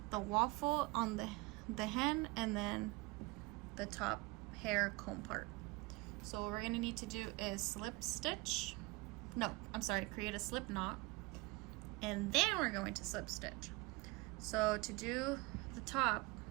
the waffle on the hen and then the top hair comb part. So what we're going to need to do is slip stitch. No, I'm sorry, create a slip knot. And then we're going to slip stitch. So to do the top,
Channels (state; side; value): quieter; left; 23.2 dB